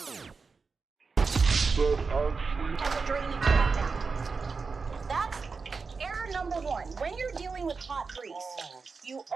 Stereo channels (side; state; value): left; quieter; 4.7 dB